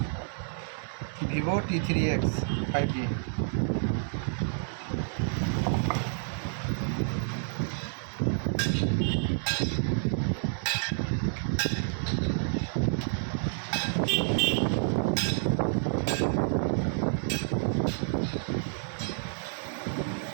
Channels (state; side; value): silent; left; 58 dB below the other